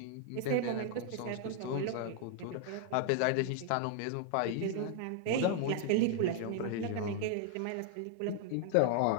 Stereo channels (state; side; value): different; both; correlation 0.00